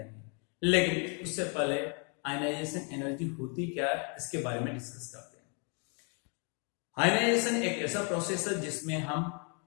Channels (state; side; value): quieter; right; 37.7 dB